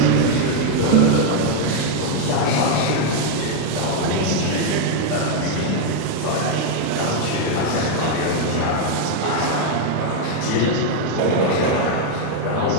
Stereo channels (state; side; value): different; both; correlation 0.01